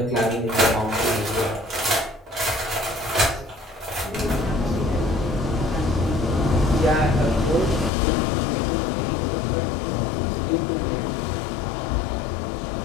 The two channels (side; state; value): right; drops out; at 7.9 s